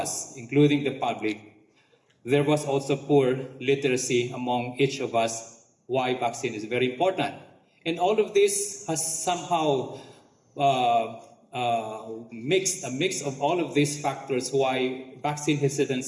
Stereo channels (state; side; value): identical; both; correlation 1.00